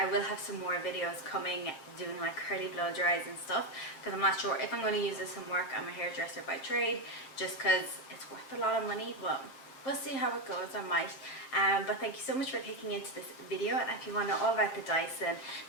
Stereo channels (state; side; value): late; right; 7.5 ms